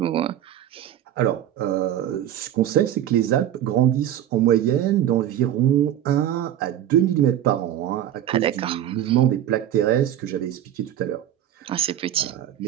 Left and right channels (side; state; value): left; quieter; 11.3 dB